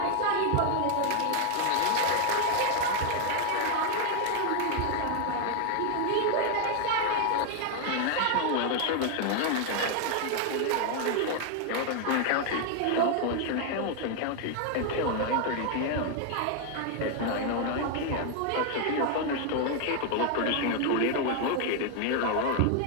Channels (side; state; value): both; different; correlation 0.00